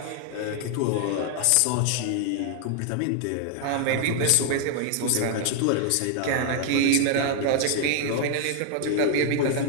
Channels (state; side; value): different; both; correlation 0.00